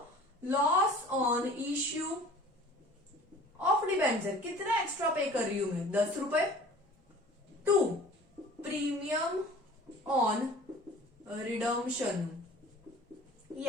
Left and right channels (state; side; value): normal; both; correlation 0.45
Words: loss on issue of debenture, कितना एक्स्ट्रा पे कर रही हूं मैं, 10 रुपए, टू प्रीमियम ऑन रिडम्पशन, ये